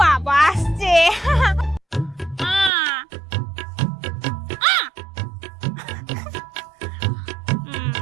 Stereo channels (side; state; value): left; drops out; at 2.7 s